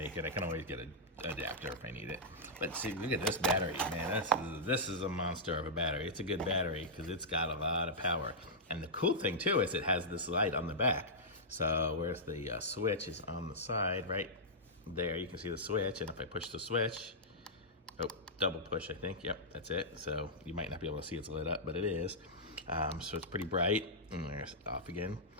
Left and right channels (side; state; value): both; normal; correlation -0.10